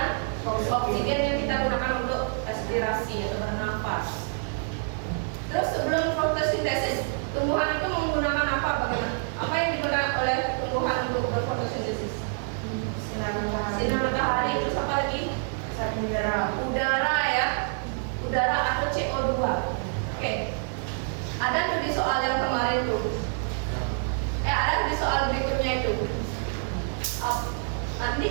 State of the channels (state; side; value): silent; left; 60 dB below the other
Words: oksigen yang kita gunakan untuk respirasi atau bernafas. Terus sebelum fotosintesis, tumbuhan itu menggunakan apa? Bagaimana? Apa yang digunakan oleh tumbuhan untuk berfotosintesis? Sinar matahari. Terus apa lagi? Udara ya. Udara atau CO2. Oke. Ada tuh di soal yang kemarin tuh. Ada di soal berikutnya itu. Nanti